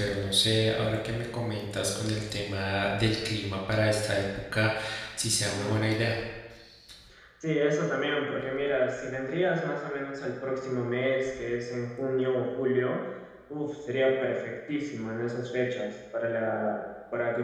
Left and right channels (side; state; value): both; identical; correlation 1.00